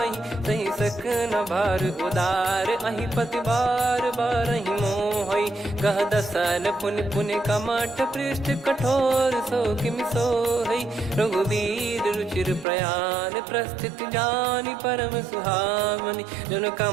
सही सक न भार उदार अहि पति बार बार ही मोहई। गह दसन पुन पुन कमठ पृष्ठ कठोर सो किम सोहई। रघुवीर रुचिर प्रयाण प्रस्थित जानि परम सुहावनी। जन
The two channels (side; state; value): left; drops out; at 12.7 s